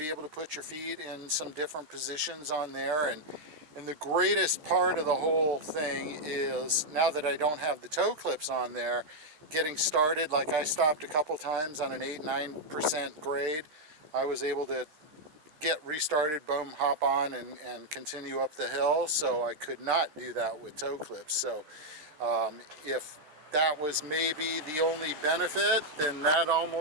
able to put your feet in some different positions on there. And the greatest part of the whole thing is, now that I don't have the toe clips on there, getting started, like I stopped a couple times on an 8-9% grade, I was able to get restarted, boom, hop on and continue up the hill. So I could not do that with toe clips. So if that was maybe the only benefit, then that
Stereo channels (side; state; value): left; late; 13 ms